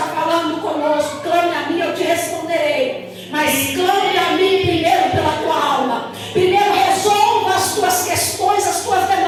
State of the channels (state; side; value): identical; both; correlation 1.00